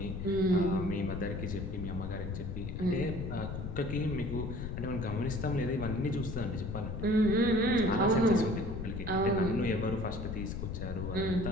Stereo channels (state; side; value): noise; left; rumble, 5 dB below the sound